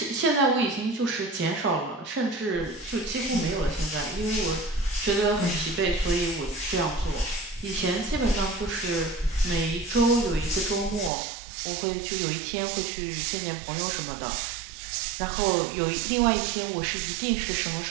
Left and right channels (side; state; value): left; drops out; at 11.1 s